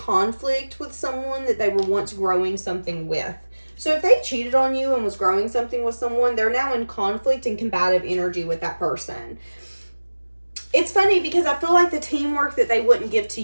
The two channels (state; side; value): inverted; both; correlation -1.00